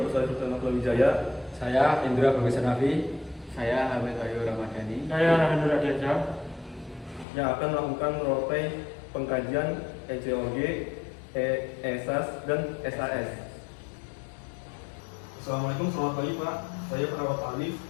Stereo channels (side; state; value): right; drops out; at 7.2 s